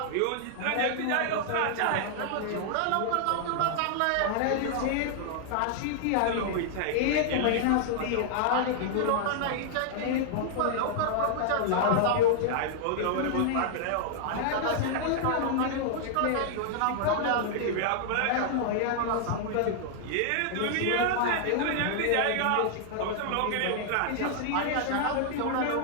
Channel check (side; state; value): both; different; correlation -0.01